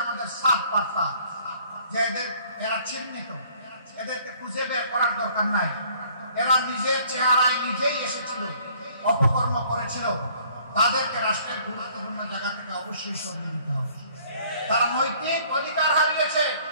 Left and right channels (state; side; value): inverted; both; correlation -0.58